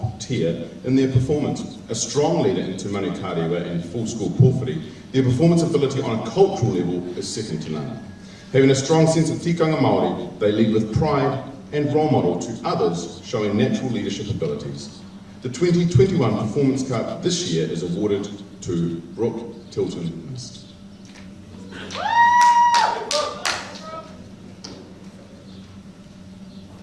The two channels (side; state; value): both; identical; correlation 1.00